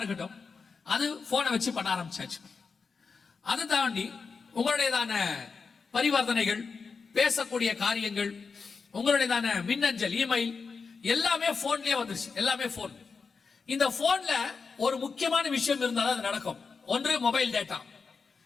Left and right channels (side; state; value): right; quieter; 5.0 dB